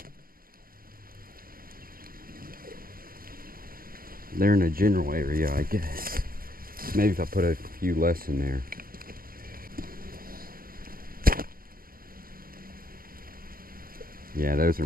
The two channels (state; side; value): late; left; 0.42 ms